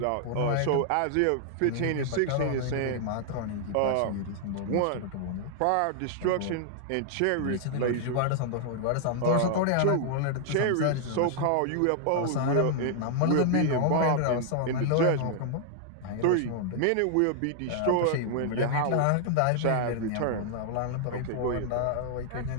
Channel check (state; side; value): different; both; correlation -0.01